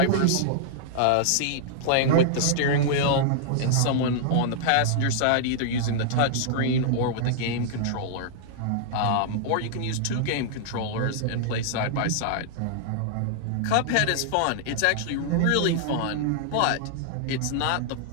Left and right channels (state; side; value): different; both; correlation -0.01